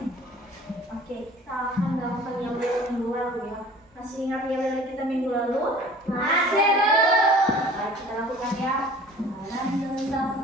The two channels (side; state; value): both; normal; correlation 0.47